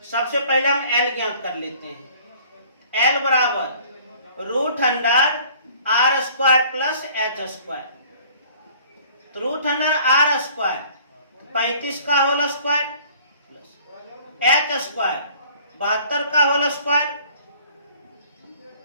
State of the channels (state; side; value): inverted; both; correlation -0.53